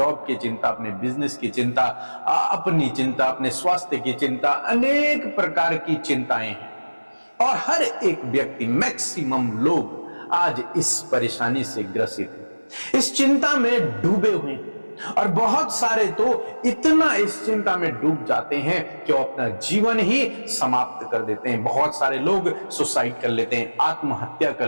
की चिंता, अपने बिजनेस की चिंता, अपनी चिंता, अपने स्वास्थ्य की चिंता, अनेक प्रकार की चिंताएं हैं। और हर एक व्यक्ति, मैक्सिमम लोग आज इस परेशानी से ग्रसित हैं, इस चिंता में डूबे हुए हैं। और बहुत सारे तो इतना इस चिंता में डूब जाते हैं कि वो अपना जीवन ही समाप्त कर देते हैं। बहुत सारे लोग सुसाइड कर लेते हैं, आत्महत्या कर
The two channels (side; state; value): both; inverted; correlation -1.00